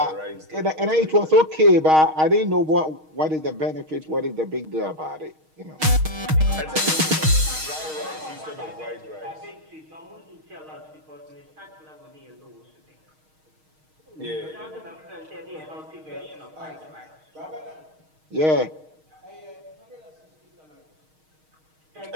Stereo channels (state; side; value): late; left; 6.4 ms